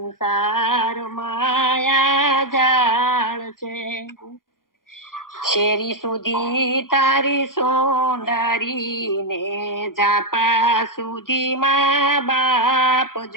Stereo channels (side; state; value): right; late; 0.91 ms